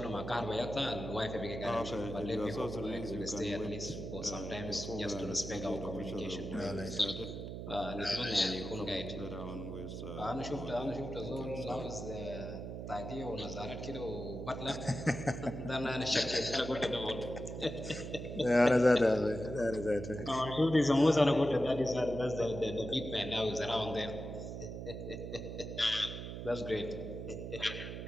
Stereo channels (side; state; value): right; noise; hum, 7 dB below the sound